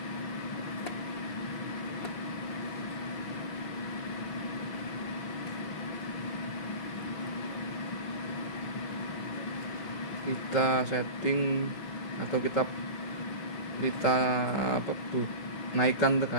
Kita setting atau kita naikkan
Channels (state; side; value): late; right; 6.1 ms